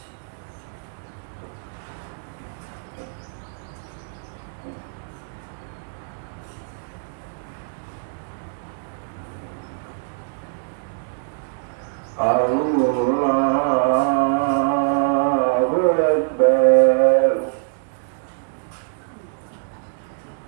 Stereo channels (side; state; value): left; silent; digital silence